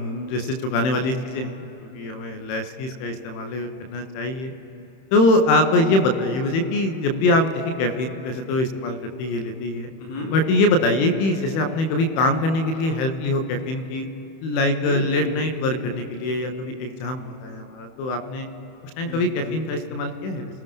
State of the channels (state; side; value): late; right; 31 ms